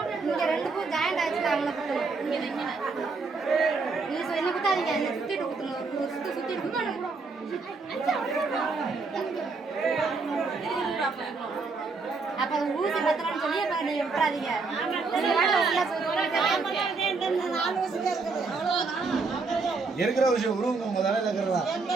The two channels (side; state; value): left; quieter; 4.2 dB